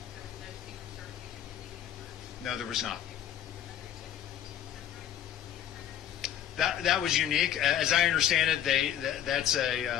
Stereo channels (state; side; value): quieter; right; 10.6 dB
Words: No, there was not. That was unique. As I understand it, that's